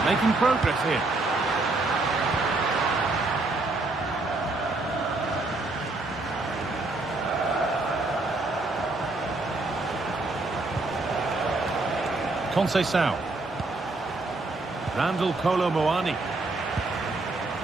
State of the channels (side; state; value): left; quieter; 3.2 dB